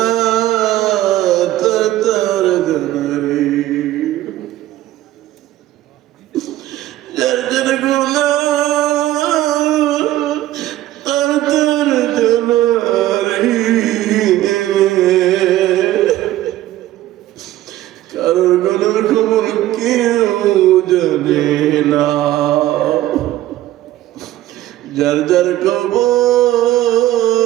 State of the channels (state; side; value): quieter; left; 14.7 dB